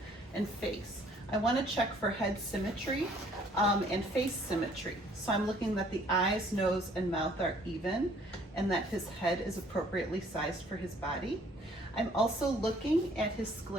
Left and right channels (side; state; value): both; normal; correlation 0.60